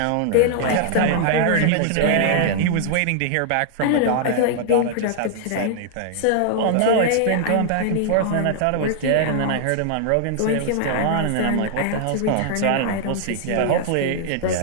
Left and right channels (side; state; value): both; different; correlation 0.00